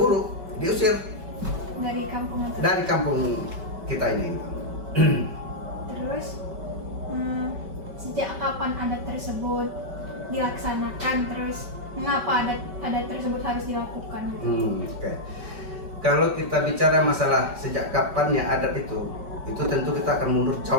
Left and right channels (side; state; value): left; late; 5.2 ms